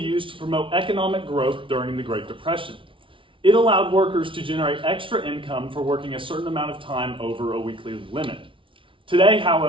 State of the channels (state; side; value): late; left; 0.25 ms